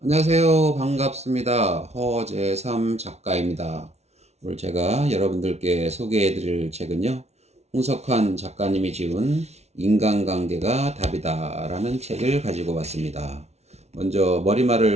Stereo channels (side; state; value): left; late; 0.31 ms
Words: 안녕하세요. 반갑습니다. 허재삼 작가입니다. 오늘 제가 여러분들께 소개해 드릴 책은요, 홍석환 작가님이 지은 인간관계가 답이다라는 책을 가지고 왔습니다. 먼저